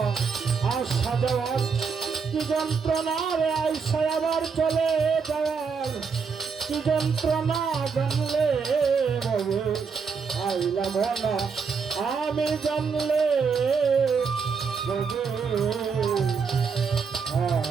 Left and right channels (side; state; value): left; quieter; 5.6 dB